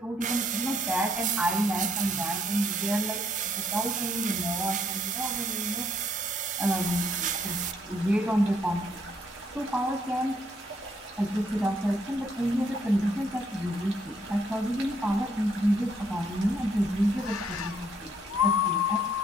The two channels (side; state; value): both; normal; correlation 0.69